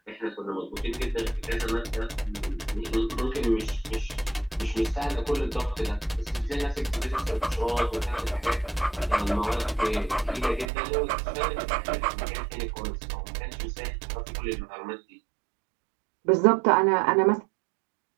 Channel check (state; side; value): drops out; left; at 10.7 s